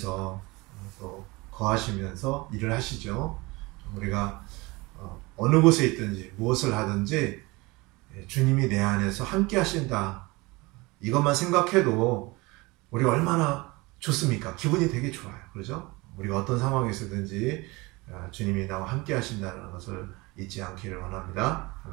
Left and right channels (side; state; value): left; quieter; 23.7 dB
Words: 또 거하시면서 일을 하시죠. 우리가 어느 곳에 있든지 무엇을 하든지 주님이 내 안에서 함께 하신다. 이것만 생각해도 우리가 얼마나 좋습니까? 기분이 되게 좋아요. 그렇죠? 우리가 어떤 상황에서든지 주님이 나와 함께 하신다는 것을 잊지 않기를 원합니다.